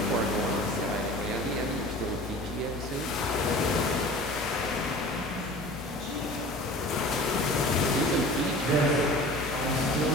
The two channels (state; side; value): normal; both; correlation 0.41